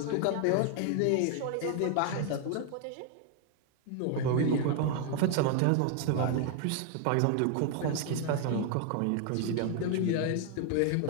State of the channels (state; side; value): different; both; correlation 0.00